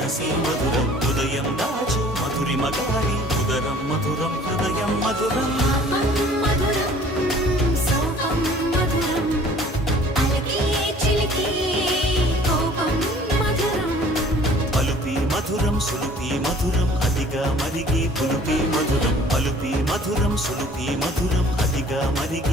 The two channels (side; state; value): both; normal; correlation 0.52